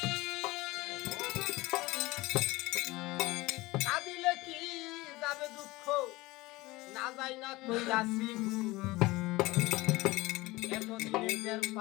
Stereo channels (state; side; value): quieter; right; 20.5 dB